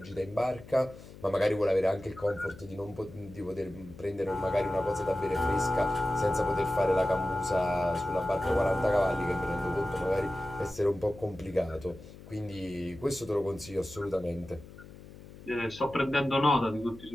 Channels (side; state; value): left; noise; hum, 18 dB below the sound